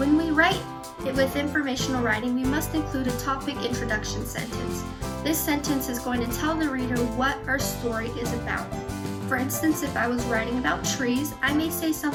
we write with informational writing, we must include a topic introduction sentence. This sentence is going to tell the reader what our story is about. For instance, if I was writing about trees, I may say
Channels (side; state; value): both; identical; correlation 1.00